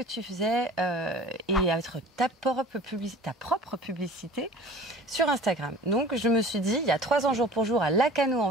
tu faisais et être ta propre publicité sur Instagram. Donc je me suis dit, il y a 3 ans jour pour jour à Lacano en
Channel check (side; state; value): both; normal; correlation 0.43